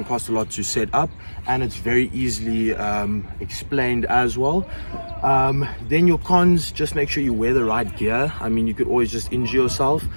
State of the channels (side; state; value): both; inverted; correlation -1.00